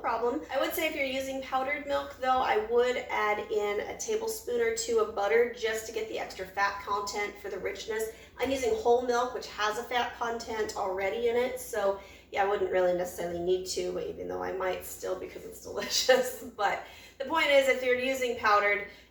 I would say if you're using powdered milk though, I would add in a tablespoon or 2 of butter just to get the extra fat content for the richness. I'm using whole milk, which has a fat content already in it, so yeah, I wouldn't really necessarily need to, but even though I might still because it's delicious. But the point is, if you're using powdered,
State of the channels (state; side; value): identical; both; correlation 1.00